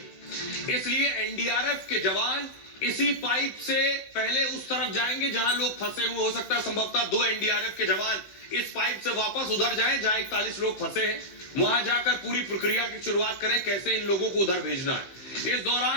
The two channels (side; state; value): right; late; 15 ms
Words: इसलिए एनडीआरएफ के जवान इसी पाइप से पहले उस तरफ जाएंगे जहां लोग फंसे हुए। हो सकता है संभवतः 2 एनडीआरएफ के जवान इस पाइप से वापस उधर जाएं जहां 41 लोग फंसे हैं, वहां जाकर पूरी प्रक्रिया की शुरुआत करें, कैसे इन लोगों को उधर भेजना है। इस